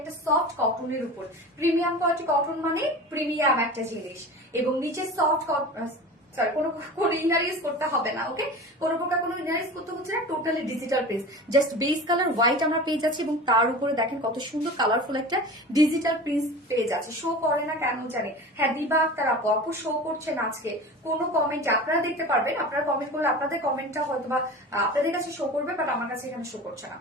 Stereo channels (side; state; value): both; normal; correlation 0.34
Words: সফট কটনের উপর। প্রিমিয়াম কোয়ালিটি কটন মানে প্রিমিয়াম একটা জিনিস, এবং নিচে সফট সরি কোনো ইনার ইউজ করতে হবে না। ওকে, কোনো প্রকার কোনো ইনার ইউজ করতে হচ্ছে না, totally digital print. Just base colour white আমরা পেয়ে যাচ্ছি এবং তার উপরে দেখেন কত সুন্দর কালারফুল একটা ডিজিটাল প্রিন্ট পেয়ে যাচ্ছে। শো করে না কেন জানি, হ্যাঁ দিবা আক্তার আপু, আপু শো করছে না আজকে কোনো কমেন্ট। আপনারা দেখতে পারবেন, আপনারা কমেন্ট করলে আপনাদের কমেন্টটা হয়তো বা আপনাদের কাছে শো করবে, বাট আমার কাছে এখানে শো করছে না।